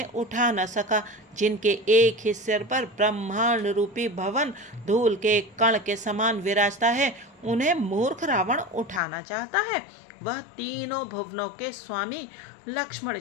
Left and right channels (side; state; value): right; drops out; at 9.0 s